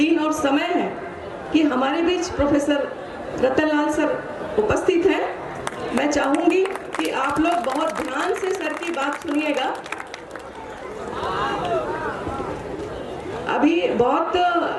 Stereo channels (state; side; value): identical; both; correlation 1.00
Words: और समय है कि हमारे बीच प्रोफेसर रतनलाल सर उपस्थित हैं। मैं चाहूँगी कि आप लोग बहुत ध्यान से सर की बात सुनिएगा। अभी बहुत